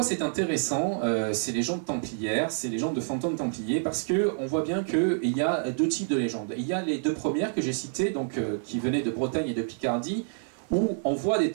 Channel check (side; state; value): left; silent; 59 dB below the other